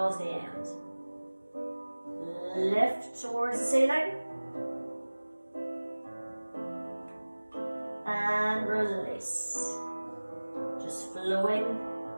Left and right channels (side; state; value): both; inverted; correlation -1.00